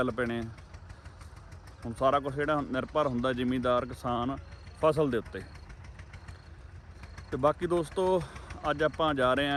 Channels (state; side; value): identical; both; correlation 1.00